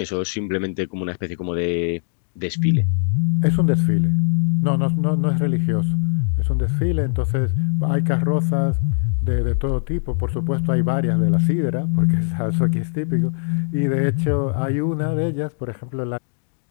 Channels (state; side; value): silent; right; digital silence